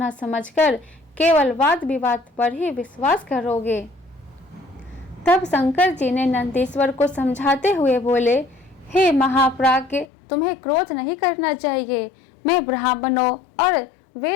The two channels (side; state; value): right; drops out; at 10.1 s